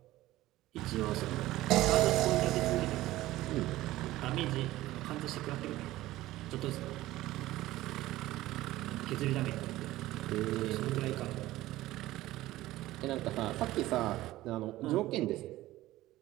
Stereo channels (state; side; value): quieter; left; 16.4 dB